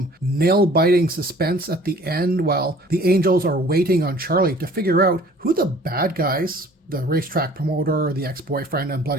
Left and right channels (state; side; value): normal; both; correlation 0.51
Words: nail-biting suspense at the end while the Angels are waiting on Charlie to figure out who the bad guys, the racetrack promoter, the ex-boyfriend, and